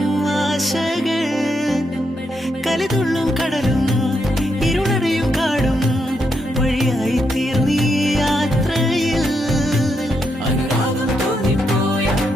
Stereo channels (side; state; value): both; normal; correlation 0.80